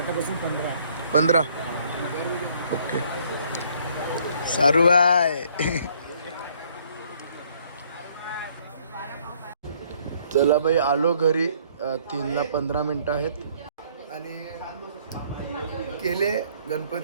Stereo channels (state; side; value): inverted; both; correlation -0.63